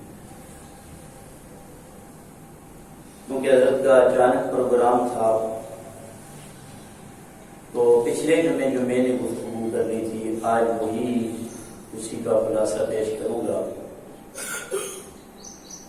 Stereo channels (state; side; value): identical; both; correlation 1.00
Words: کیونکہ حضرت کا اچانک پروگرام تھا تو پچھلے جمعے جو میں نے گفتگو کرنی تھی آج وہی اسی کا خلاصہ پیش کروں گا۔